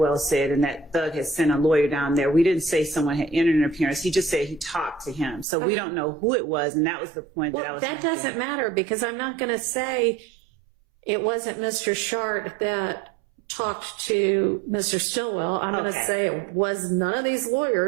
said, and that Thug had sent a lawyer down there. We didn't say someone had entered an appearance. He just said he talked to him. So we don't know who it was, and that was the point that I Well, was that making. doesn't matter because I'm not going to say it wasn't Mr. Shart that talked to Mr. Stillwell. I'm going to Okay. say it was none of these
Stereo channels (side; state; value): left; drops out; at 5.5 s